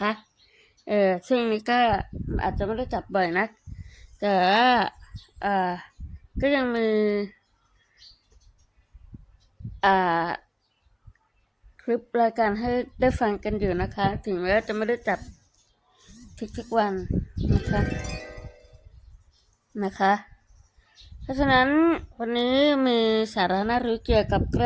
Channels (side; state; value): both; identical; correlation 1.00